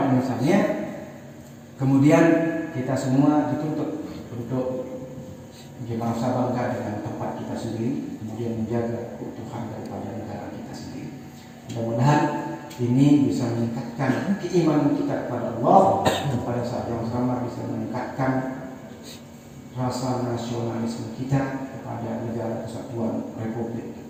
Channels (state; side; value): identical; both; correlation 1.00